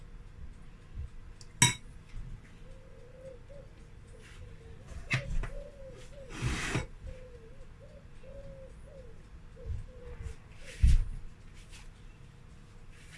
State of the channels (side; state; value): both; identical; correlation 1.00